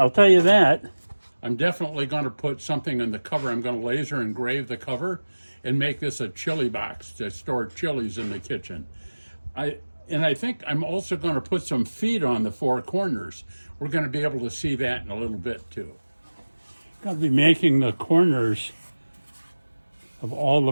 tell you that. I'm definitely going to put something in the cover. I'm going to laser engrave the cover and make this a chili box to store chilies in the kitchen. I think I'm also going to put some feet on the four corners. We're going to be able to see that in a little bit too. I'm going to be making the corners of all the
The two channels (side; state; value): both; inverted; correlation -1.00